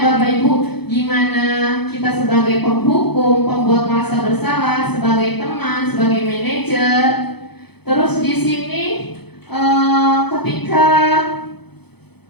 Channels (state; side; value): late; right; 0.98 ms